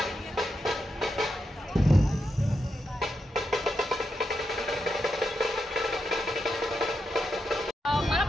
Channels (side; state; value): both; normal; correlation 0.85